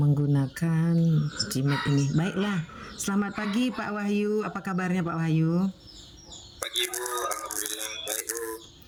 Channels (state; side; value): identical; both; correlation 1.00